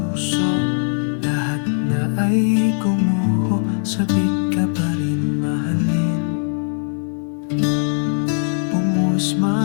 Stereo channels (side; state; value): right; silent; digital silence